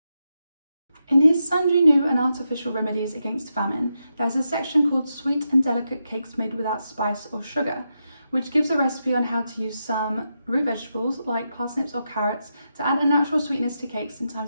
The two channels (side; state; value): both; inverted; correlation -0.86